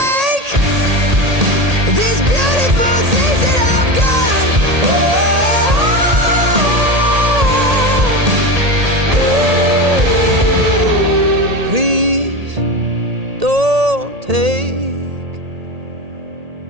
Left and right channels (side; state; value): left; late; 1.8 ms